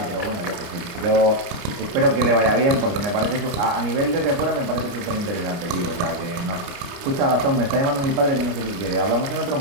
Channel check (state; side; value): late; left; 29 ms